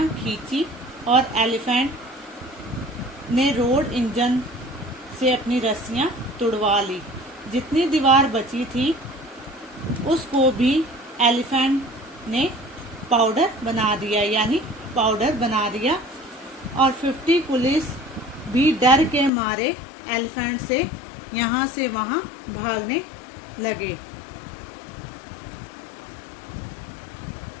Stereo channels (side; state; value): right; drops out; at 19.3 s